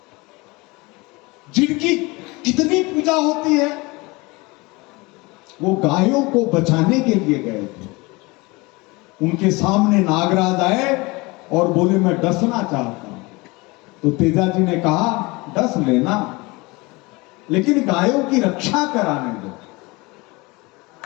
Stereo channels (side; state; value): right; quieter; 24.4 dB